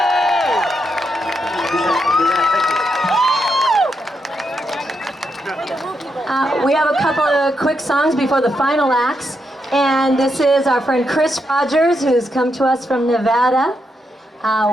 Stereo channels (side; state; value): both; normal; correlation 0.82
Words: We have a couple of quick songs before the final acts, and this is our friend Chris Rogers, who's come to us from Nevada.